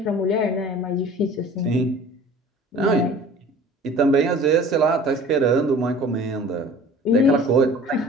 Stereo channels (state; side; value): normal; both; correlation 0.45